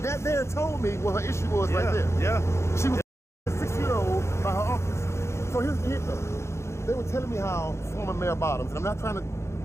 there told me what her issue was right there. Yeah. She was 6-year-old by her uncles. So here's the hit though. They were telling me how former Mayor Bottoms, and I'm not trying to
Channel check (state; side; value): late; right; 0.13 ms